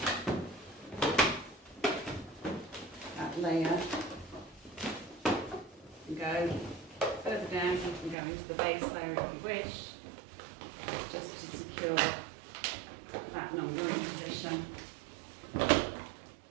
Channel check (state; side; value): drops out; left; at 8.2 s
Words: that layer and go further down. You can go into the base layer if you wish, just to secure that number in position.